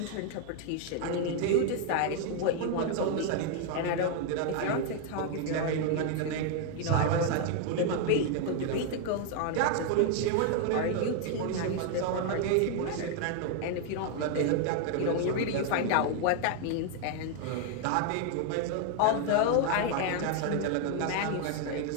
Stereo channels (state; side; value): different; both; correlation 0.00